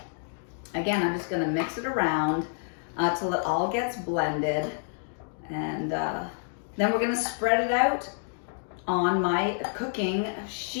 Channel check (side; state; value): right; silent; digital silence